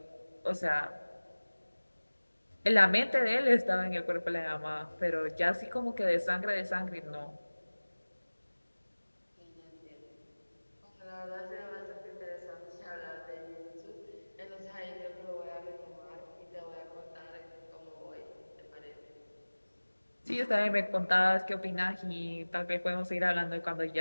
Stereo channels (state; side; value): inverted; both; correlation -1.00